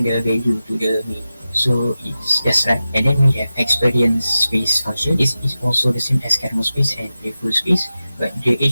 the value to the main. So it's just right. And then we have experience space function. This is also the same as kernel space and playful space, but the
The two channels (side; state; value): both; inverted; correlation -0.93